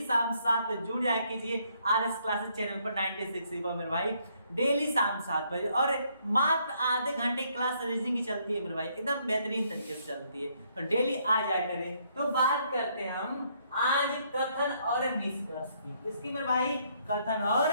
शाम 7 बजे जुड़ जाया कीजिए RS क्लासेस चैनल पर 96 पर मेरे भाई, डेली शाम 7 बजे। और मात्र आधे घंटे क्लास रीजनिंग की चलती है मेरे भाई, एकदम बेहतरीन तरीके से चलती है, तो डेली आ जाया करें। तो बात करते हैं हम आज कथन और निष्कर्ष की। इसकी मेरे भाई कथन और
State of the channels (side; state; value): both; inverted; correlation -0.70